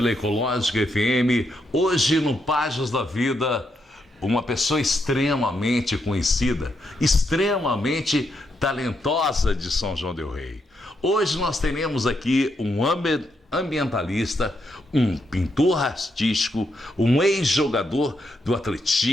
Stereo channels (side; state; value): both; normal; correlation 0.80